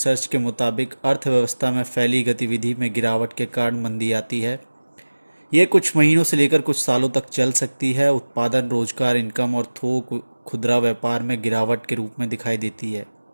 के मुताबिक अर्थव्यवस्था में फैली गतिविधि में गिरावट के कारण मंदी आती है। ये कुछ महीनों से लेकर कुछ सालों तक चल सकती है। उत्पादन, रोजगार, इनकम और थोक खुदरा व्यापार में गिरावट के रूप में दिखाई देती है।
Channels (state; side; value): inverted; both; correlation -1.00